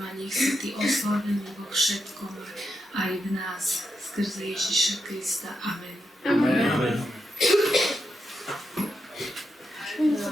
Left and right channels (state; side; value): normal; both; correlation 0.84